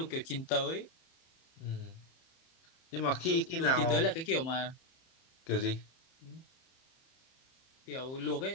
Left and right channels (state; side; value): late; right; 31 ms